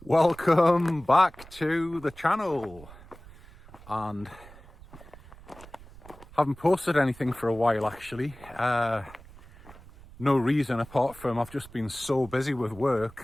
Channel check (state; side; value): noise; right; rumble, 20 dB below the sound